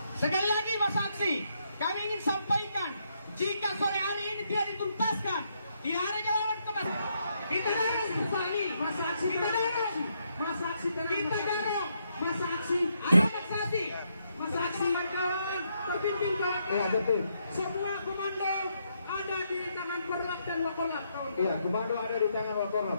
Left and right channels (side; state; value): both; inverted; correlation -0.77